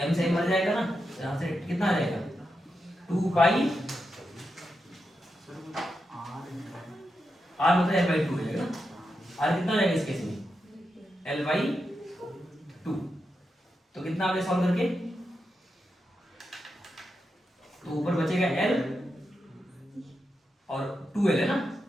से मर जाएगा ना, तो यहाँ से कितना आ जाएगा, 2π, r मतलब L/2 हो जाएगा ना, r कितना रहेगा इस केस में, L/2, तो कितना आपने सॉल्व करके, तो ऊपर बचेगा L और 2L है ना,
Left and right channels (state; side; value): normal; both; correlation 0.87